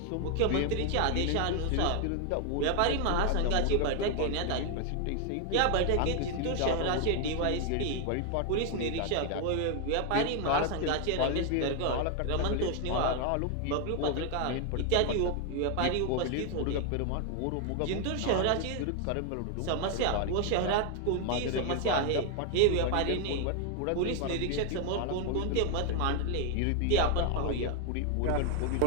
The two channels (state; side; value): different; both; correlation 0.00